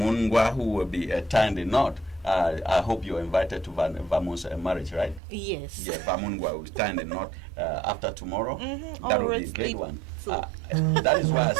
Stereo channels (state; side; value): drops out; left; at 5.2 s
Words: who will be tying the knot. I hope you're invited to Vamun's marriage, right? Yes. Yeah, Vamungwa will tie the knot after tomorrow. Mm-hmm. That will be a great one. That is why I